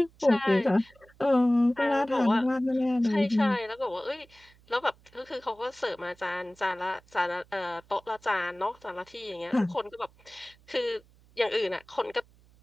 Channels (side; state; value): right; noise; hum, 29 dB below the sound